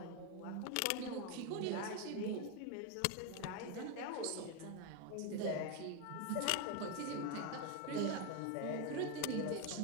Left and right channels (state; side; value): different; both; correlation 0.02